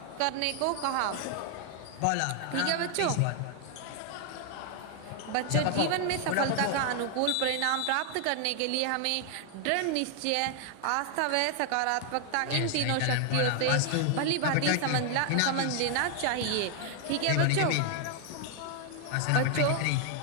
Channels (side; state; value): both; different; correlation 0.00